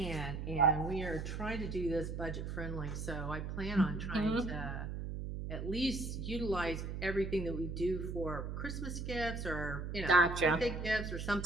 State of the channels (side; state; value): right; noise; hum, 5 dB below the sound